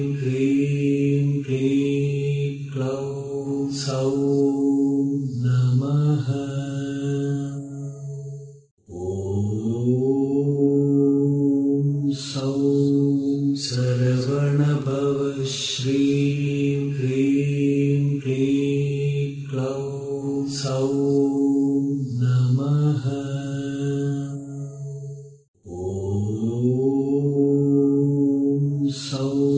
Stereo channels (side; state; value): both; identical; correlation 1.00